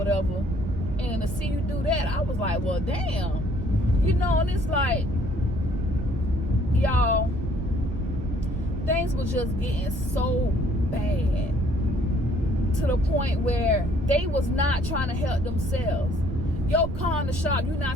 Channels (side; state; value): right; noise; rumble, 6 dB below the sound